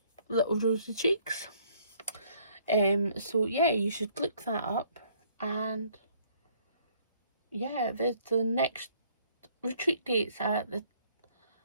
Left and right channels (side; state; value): both; inverted; correlation -0.62